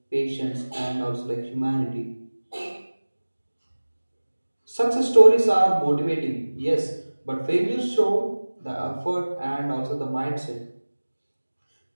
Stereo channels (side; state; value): both; inverted; correlation -1.00